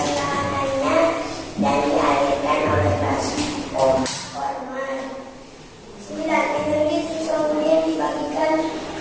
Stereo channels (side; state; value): both; identical; correlation 1.00